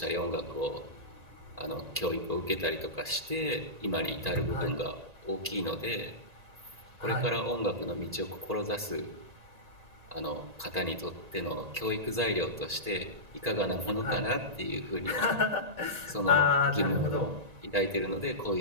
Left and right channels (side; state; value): left; late; 1.8 ms